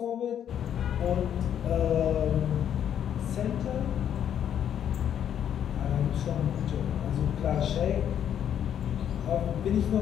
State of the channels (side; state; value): right; quieter; 9.5 dB